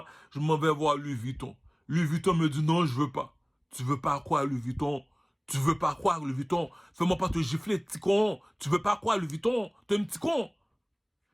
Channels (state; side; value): identical; both; correlation 1.00